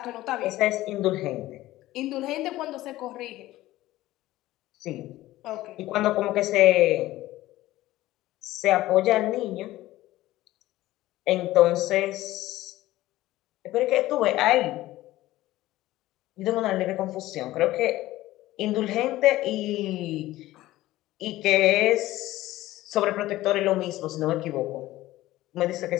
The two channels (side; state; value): right; quieter; 16.3 dB